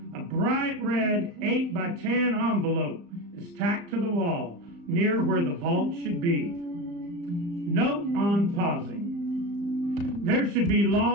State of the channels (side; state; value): left; late; 35 ms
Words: A bright red 8x10 envelope is tacked to the wall near where the vault should be. Note on pausing. There should be